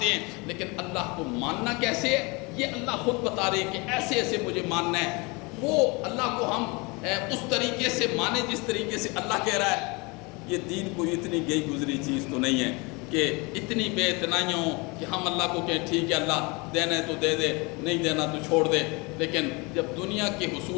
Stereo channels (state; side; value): quieter; right; 27.7 dB